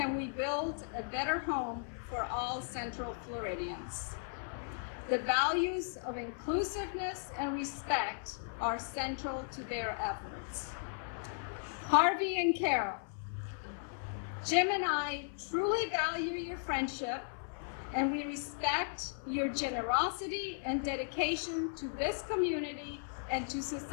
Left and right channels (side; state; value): right; silent; 54 dB below the other